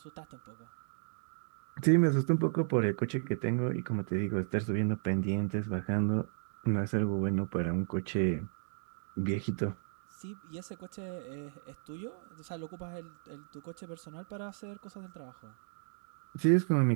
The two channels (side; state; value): left; silent; digital silence